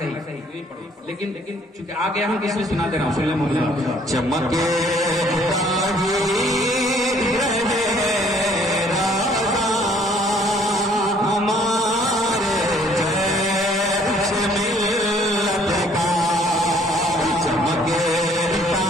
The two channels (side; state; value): both; normal; correlation 0.60